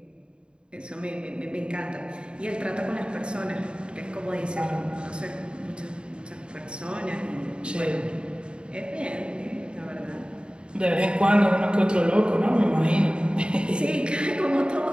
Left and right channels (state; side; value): late; left; 0.052 ms